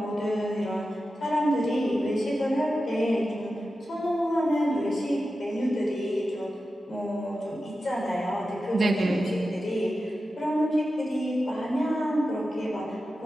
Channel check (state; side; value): normal; both; correlation 0.92